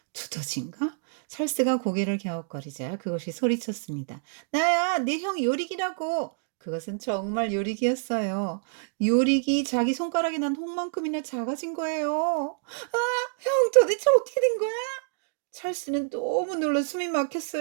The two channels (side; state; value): left; silent; digital silence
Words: 두더지인가? 찰스가 고개를 갸웃거리자 그것이 소리쳤습니다. 나야, 내 형 요릭이라고. 그것은 정말 요릭이었어요. 요릭이 자기 손가락에 난 홍만큼이나 작아진 거예요. 아, 형 도대체 어떻게 된 거야? 찰스는 너무 놀라 숨이